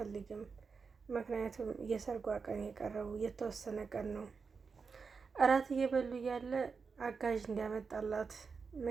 ምክንያቱም የሰርጓ ቀን የቀረው የተወሰነ ቀን ነው። እራት እየበሉ እያለ አጋዥ እንዲያመጣላት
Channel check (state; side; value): quieter; left; 5.2 dB